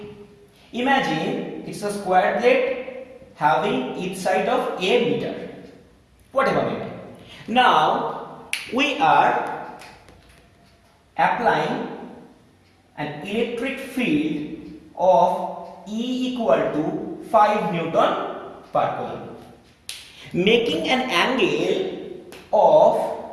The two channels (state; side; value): identical; both; correlation 1.00